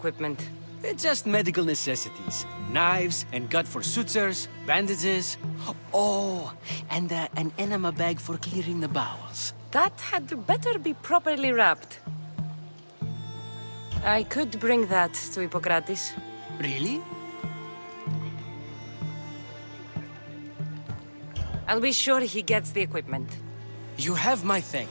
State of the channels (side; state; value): both; inverted; correlation -1.00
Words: Just medical necessities. Knives and gut for sutures, bandages. Oh, and an enema bag for clearing the bowels. That had better be properly wrapped. I could bring that to Hippocrates. Really? I'll be sure he gets the equipment. You have my